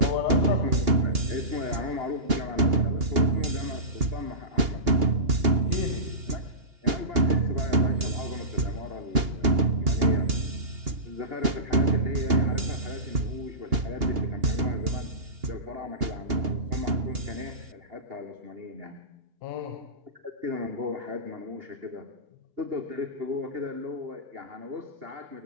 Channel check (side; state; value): left; late; 2.8 ms